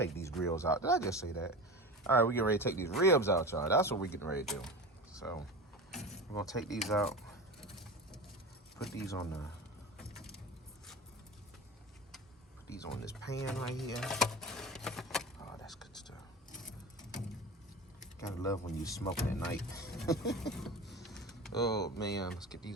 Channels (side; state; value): both; normal; correlation 0.29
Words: these grills out. Did I just say that? All right, we getting ready to take these ribs out, y'all. That's what we getting ready to do. So we're gonna take these out. Put these on this pan right here. Oh, that's good stuff. Gotta love when you smoking at night. Oh man, let's get